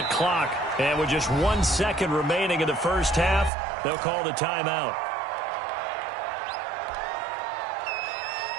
clock. And with just 1 second remaining in the first half, they'll call the timeout.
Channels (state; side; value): drops out; left; at 3.5 s